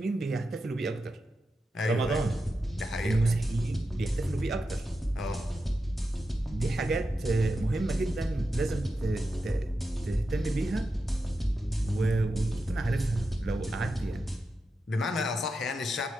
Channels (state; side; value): normal; both; correlation 0.89